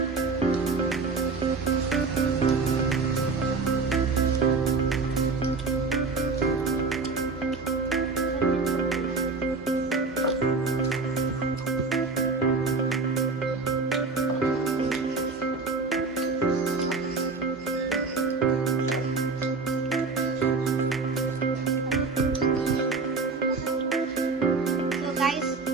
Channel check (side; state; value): left; quieter; 4.1 dB